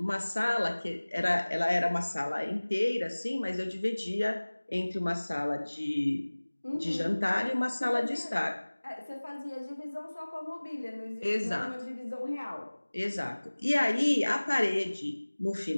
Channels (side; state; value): both; inverted; correlation -1.00